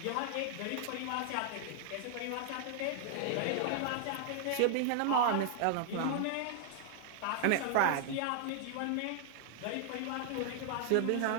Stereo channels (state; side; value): different; both; correlation 0.00